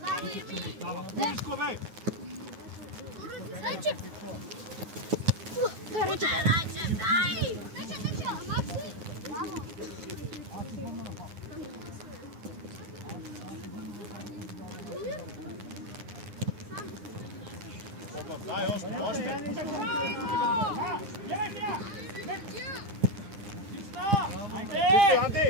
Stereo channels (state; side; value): late; left; 9.6 ms